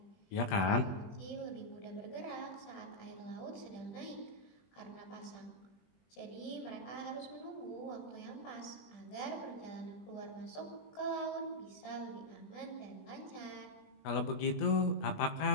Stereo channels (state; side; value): late; right; 20 ms